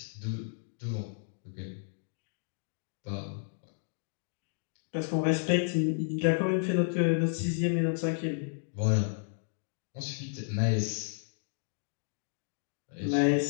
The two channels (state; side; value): silent; right; digital silence